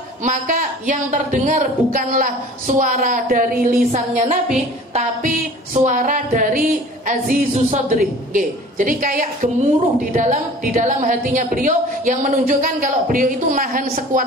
maka yang terdengar bukanlah suara dari lisannya Nabi, tapi suara dari azizus sadri. Jadi kayak gemuruh di dalam hatinya beliau yang menunjukkan kalau beliau itu nahan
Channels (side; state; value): both; normal; correlation 0.45